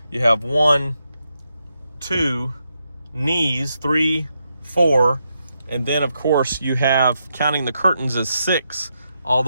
You have 1, 2, knees, 3, 4, and then of course you have, counting the curtains, as 6 all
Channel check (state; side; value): inverted; both; correlation -0.83